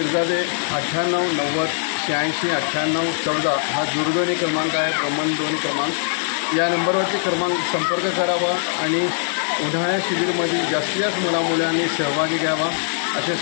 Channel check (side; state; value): right; silent; digital silence